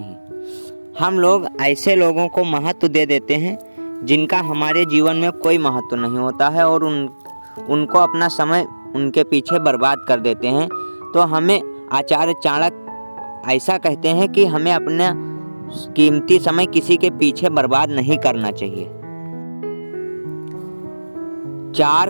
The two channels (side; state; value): both; inverted; correlation -1.00